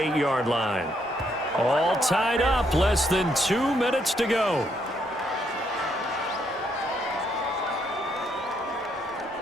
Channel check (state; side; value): normal; both; correlation 0.74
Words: line. All tied up, less than 2 minutes to go.